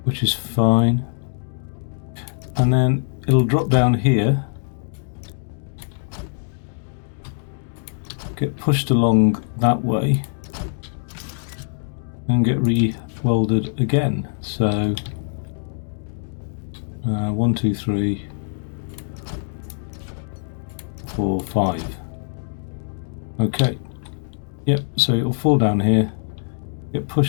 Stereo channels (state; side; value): silent; right; digital silence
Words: which is fine, and then it'll drop down here, get pushed along that way, and get re-welded again. So 1, 2, 3, 4, 5. Okay. Yep, so it'll fall down here, get